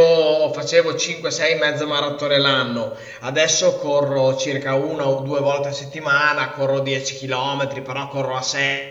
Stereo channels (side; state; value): both; identical; correlation 1.00